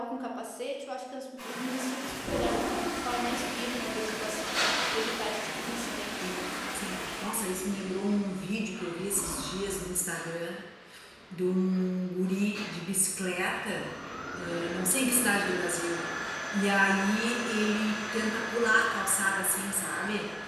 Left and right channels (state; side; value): identical; both; correlation 1.00